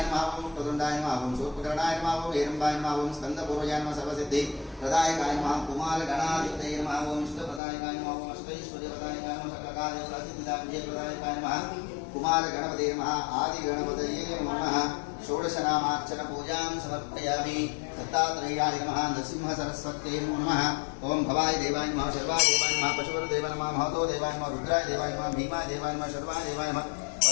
नमः ओं प्रदुण्डाय नमः ओं शूर्पकर्णाय नमः ओं हेरम्बाय नमः ओं स्कन्दपूर्वजाय नमः सर्वसिद्धि प्रदायकाय नमः कुमारगणाधिपतये नमः ओं इष्टप्रदायकाय नमः ओं अष्टैश्वर्यप्रदायकाय नमः सकलकार्यसिद्धिदायकाय नमः कुमार गणपते नमः आदि गणपतये नमः। षोडशनामार्चन पूजां समर्पयामि। दत्तात्रेयाय नमः। नरसिंह सरस्वत्यै नमः। ओं भवाय देवाय नमः शर्वाय देवाय नमः पशुपते देवाय नमः महतो देवाय नमः रुद्राय देवाय नमः भीमाय देवाय नमः शर्वाय देवाय नमः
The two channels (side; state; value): right; drops out; at 7.6 s